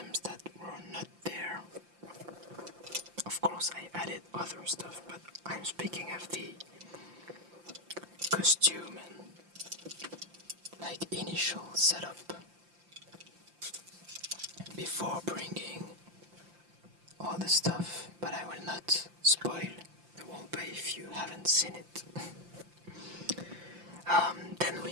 that were not there. Of course I added other stuff, but I'm speaking of the costume and like initial setup before bringing all the stuff, but I will not spoil the roleplay if you haven't seen it. Then we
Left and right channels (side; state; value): left; late; 5.8 ms